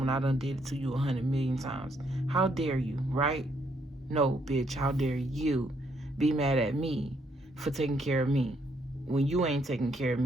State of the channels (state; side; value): normal; both; correlation 0.72